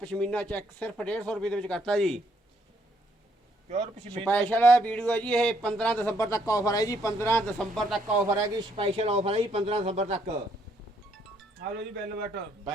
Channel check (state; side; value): normal; both; correlation 0.70